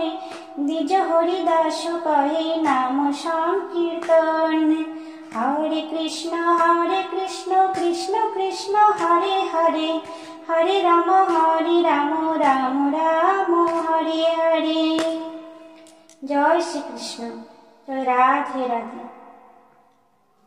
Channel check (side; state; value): both; identical; correlation 1.00